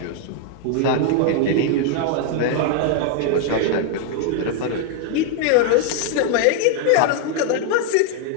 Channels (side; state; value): both; different; correlation 0.00